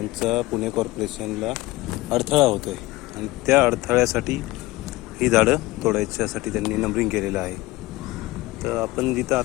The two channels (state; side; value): quieter; right; 19.5 dB